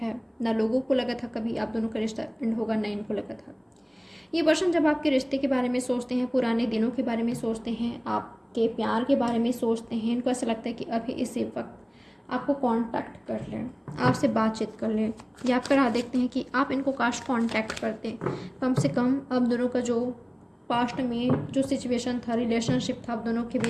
है। ना लोगों को लगा था कभी आप दोनों का रिश्ता एंड होगा, ना इनको लगा था। ये पर्सन जब आपके रिश्ते के बारे में सोचते हैं, पुराने दिनों के बारे में सोचते हैं, आपके प्यार के बारे में सोचते हैं, इनको ऐसा लगता है कि अभी इसी वक्त आपको कांटेक्ट कर लें, आपसे बातचीत कर लें, या आप राह देखते हैं कि आप इनको काश कांटेक्ट करते। कम से कम आप दोनों का जो पास्ट में जो सिचुएशन था, रिलेशनशिप था, आप दोनों के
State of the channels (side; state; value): both; identical; correlation 1.00